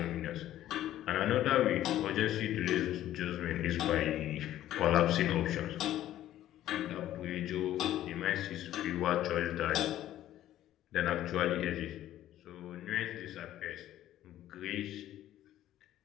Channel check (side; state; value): right; quieter; 13.0 dB